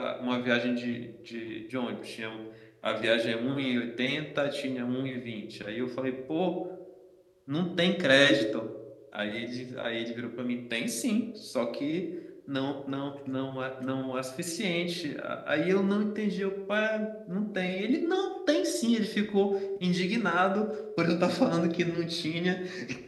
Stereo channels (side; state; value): both; identical; correlation 1.00